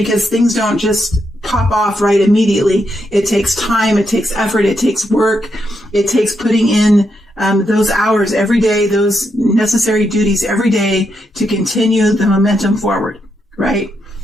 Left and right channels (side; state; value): both; normal; correlation 0.81